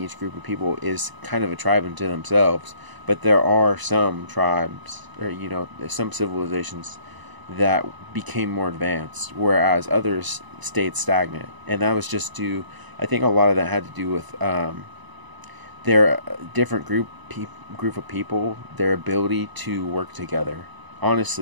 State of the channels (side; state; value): left; late; 1.0 ms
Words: group of people is kind of a tribe unto themselves, but there are some tribes, or some civilizations that became more advanced, whereas others stayed stagnant. And that was just due, I think a lot of that had to do with their different group of people, their ability to work together.